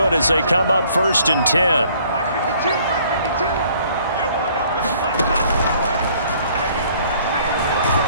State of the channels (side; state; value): both; inverted; correlation -0.59